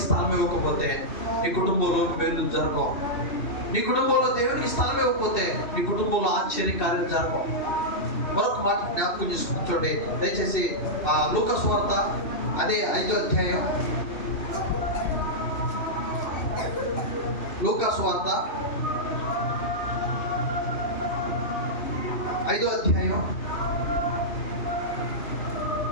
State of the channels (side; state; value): right; late; 2.7 ms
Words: స్థలం ఇవ్వకపోతే నీ కుటుంబంలో మేలు జరగవు. నీ కుటుంబంలో దేవునికి స్థలం ఇవ్వకపోతే నీ కుటుంబంలో ఆశ్చర్యకార్యాలు జరగవు. మరొక మాట జ్ఞాపకం చేసుకుని చూడండి దయచేసి. లూకా సువార్త అదే 5వ అధ్యాయం. లూకా సువార్త 5వ అధ్యాయం